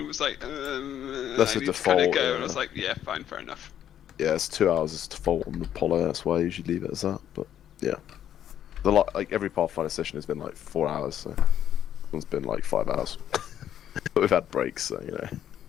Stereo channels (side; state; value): right; quieter; 10.4 dB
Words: was like, That's I a need to kind of default, go, yeah. and I was like, yeah, fine, fair enough. Yeah, it's 2 hours is default on the Apollo. That's why I usually leave it as that. But yeah, like every Pathfinder session has been like 4 hours, so it's been like 5 hours. But we've had breaks, so you know.